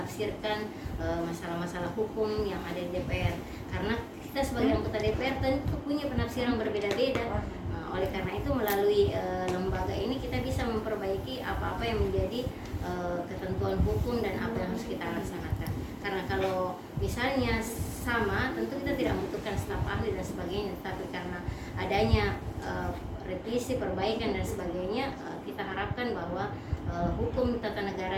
masalah-masalah hukum yang ada di DPR. Karena kita sebagai anggota DPR tentu punya penafsiran berbeda-beda. Oleh karena itu melalui lembaga ini kita bisa memperbaiki apa-apa yang menjadi ketentuan hukum dan apa yang harus kita laksanakan. Karena kalau misalnya sama, tentu kita tidak membutuhkan staf ahli dan sebagainya. Tapi karena adanya revisi, perbaikan dan sebagainya, kita harapkan bahwa hukum tata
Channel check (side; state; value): both; identical; correlation 1.00